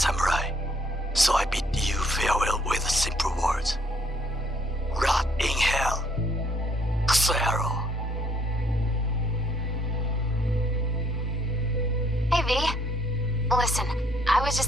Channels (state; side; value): normal; both; correlation 0.66